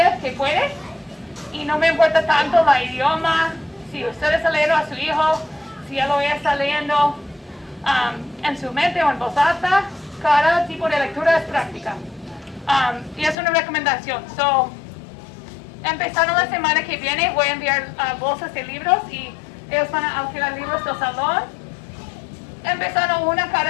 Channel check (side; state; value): right; drops out; at 13.4 s